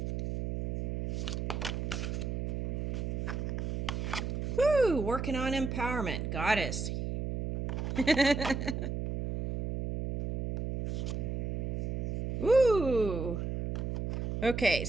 Woo! Working on empowerment, goddess. Ooh. Okay,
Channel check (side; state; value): right; noise; hum, 2 dB below the sound